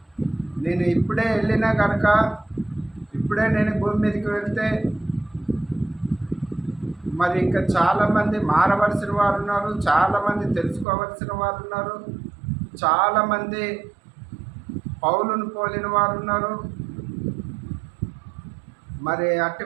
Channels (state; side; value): drops out; left; at 10.9 s